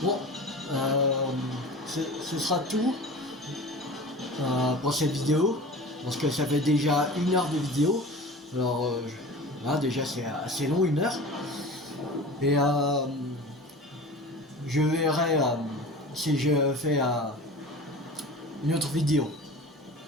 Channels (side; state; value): both; normal; correlation 0.37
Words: Bon, ce sera tout pour cette vidéo, parce que ça fait déjà 1 heure de vidéo. Alors là déjà c'est assez long, 1 heure. Et je verrai si je fais une autre vidéo.